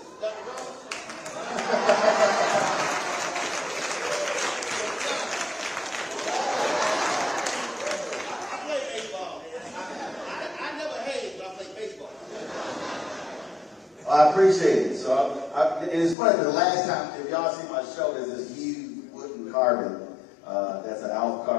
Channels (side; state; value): right; drops out; at 16.2 s